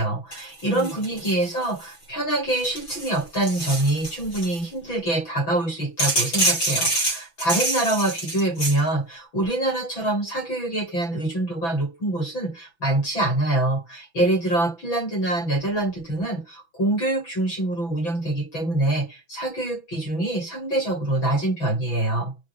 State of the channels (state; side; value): late; right; 6.0 ms